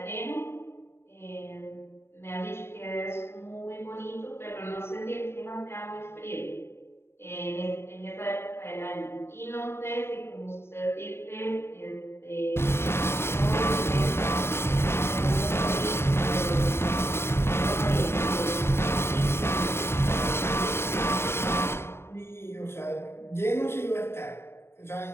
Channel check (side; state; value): right; late; 0.12 ms